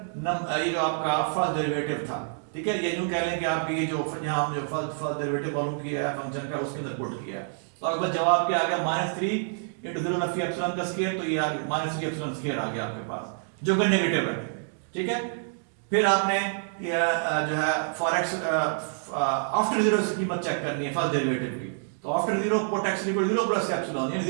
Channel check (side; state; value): left; silent; digital silence